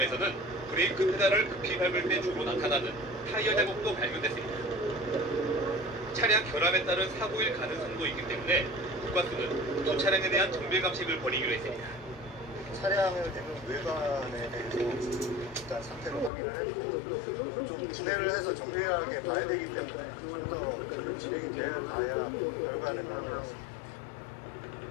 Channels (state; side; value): drops out; right; at 16.3 s